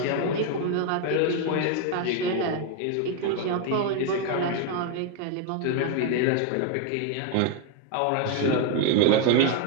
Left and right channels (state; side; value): different; both; correlation 0.01